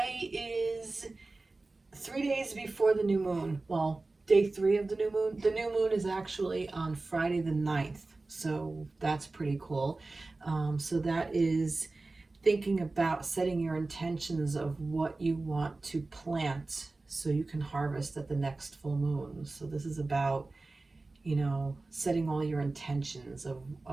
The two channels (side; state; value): left; quieter; 3.3 dB